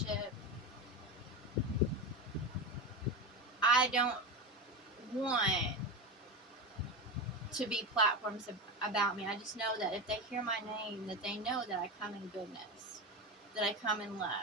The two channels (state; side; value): normal; both; correlation 0.20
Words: I don't want to be platforms about me. I just know that if they hear my name, that they know that I come in goodness, that I come in